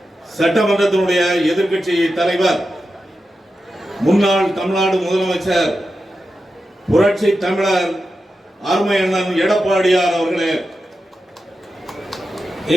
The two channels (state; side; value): normal; both; correlation 0.90